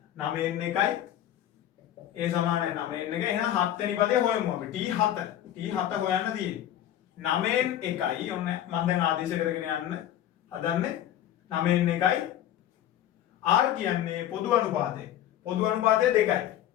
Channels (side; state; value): right; quieter; 11.6 dB